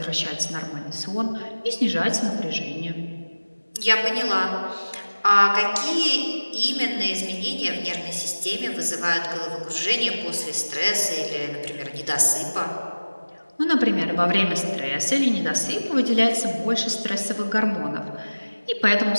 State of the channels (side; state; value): both; inverted; correlation -1.00